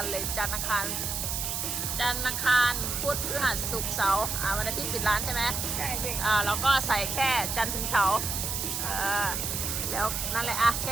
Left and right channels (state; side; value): noise; right; hiss, 2 dB below the sound